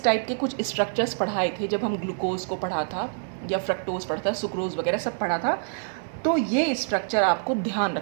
टाइप के कुछ स्ट्रक्चर्स पढ़ाए थे जब हम ग्लूकोज को पढ़ा था, या फ्रक्टोज पढ़ा था, सुक्रोज वगैरह सब पढ़ा था। तो ये स्ट्रक्चर आपको ध्यान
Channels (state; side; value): silent; left; digital silence